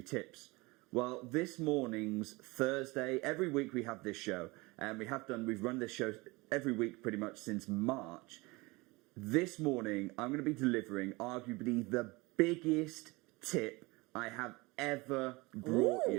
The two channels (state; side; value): quieter; left; 23.8 dB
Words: tips. Well, this morning's Thursday, every week we have this show, and we've run this show every week pretty much since March. This morning, I'm going to be delivering arguably the biggest tip I have ever brought